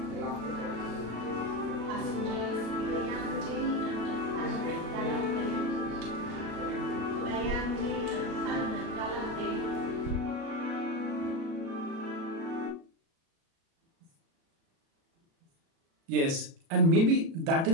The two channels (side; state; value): left; late; 36 ms